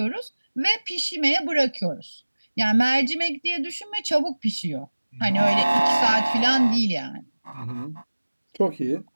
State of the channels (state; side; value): inverted; both; correlation -1.00